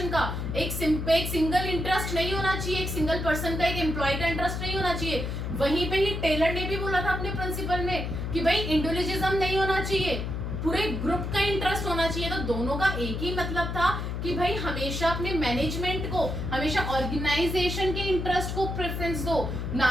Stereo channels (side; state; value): left; noise; hum, 3 dB below the sound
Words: का, एक सिंगल इंटरेस्ट नहीं होना चाहिए, एक सिंगल पर्सन का, एक एम्प्लॉय का इंटरेस्ट नहीं होना चाहिए। वहीं पे ही टेलर ने भी बोला था अपने प्रिंसिपल में कि भाई इंडिविजुअलिज्म नहीं होना चाहिए, पूरे ग्रुप का इंटरेस्ट होना चाहिए। तो दोनों का एक ही मतलब था कि भाई हमेशा अपने मैनेजमेंट को, हमेशा ऑर्गेनाइजेशन के इंटरेस्ट को प्रेफरेंस दो,